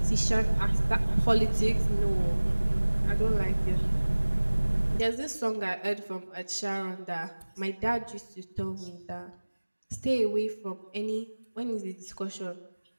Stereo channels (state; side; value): inverted; both; correlation -1.00